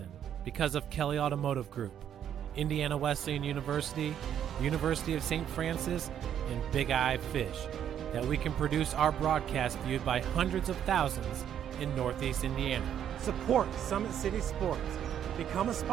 because of Kelly Automotive Group, Indiana Wesleyan University, University of St. Francis, and Big Eye Fish, that we can produce our broadcast viewed by hundreds of thousands in Northeast Indiana. Support Summit City Sports. Become a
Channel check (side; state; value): left; quieter; 9.6 dB